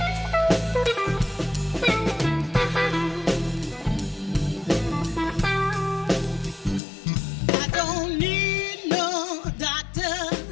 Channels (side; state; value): right; drops out; at 6.8 s